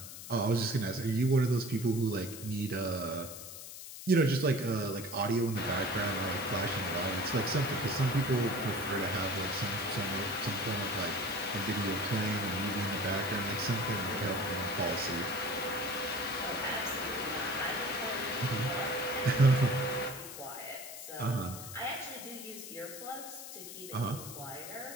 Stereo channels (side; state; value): left; noise; hiss, 11 dB below the sound